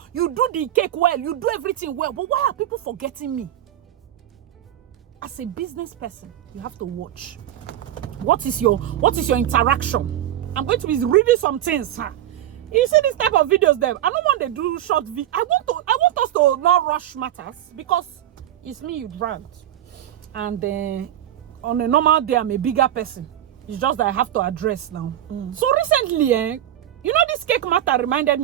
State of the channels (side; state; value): left; quieter; 12.1 dB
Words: you do the cake well, you do everything well, but why are people forgetting me? As a business person, you have to watch. What is your interaction? I'm going to be reading some things, huh? You see this type of videos there. I don't want to do short video. I want us to not rush matters because it's me you dragged. And on a normal day, I'm a bigger person. It's just that I have to address now. So recently, you know, this cake matter reminded